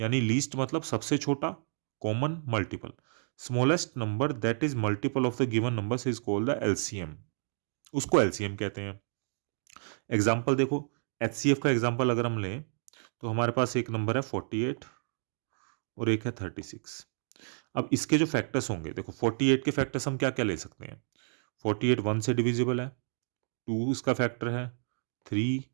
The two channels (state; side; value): silent; left; 56 dB below the other